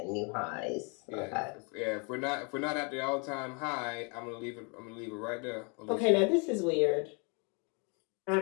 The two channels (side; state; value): right; quieter; 34.0 dB